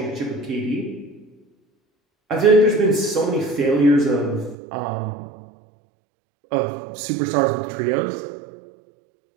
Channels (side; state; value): left; drops out; at 4.5 s